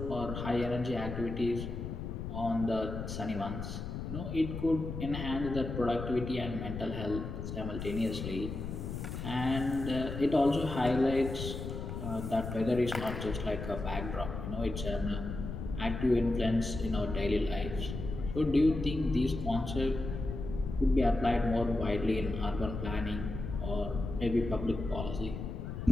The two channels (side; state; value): left; noise; rumble, 6 dB below the sound